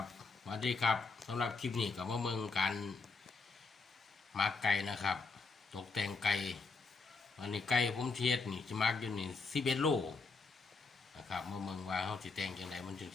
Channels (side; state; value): right; quieter; 4.4 dB